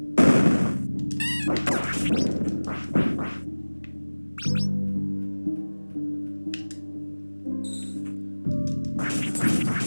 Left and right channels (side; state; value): both; inverted; correlation -1.00